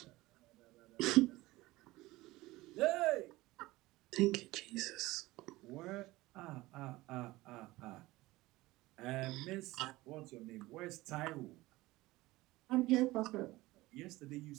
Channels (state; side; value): quieter; left; 19.2 dB